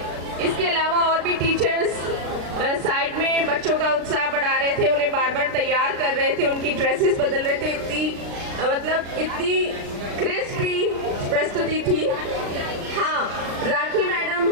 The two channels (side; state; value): left; late; 36 ms